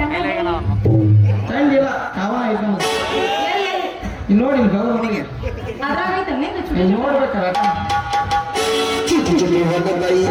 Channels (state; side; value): identical; both; correlation 1.00